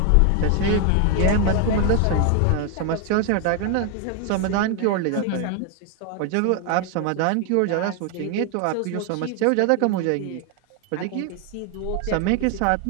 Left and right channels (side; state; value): both; different; correlation 0.01